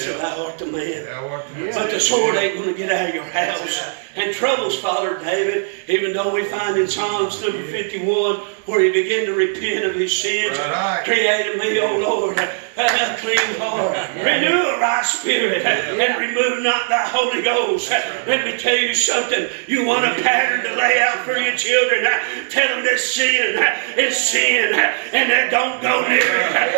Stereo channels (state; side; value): silent; left; digital silence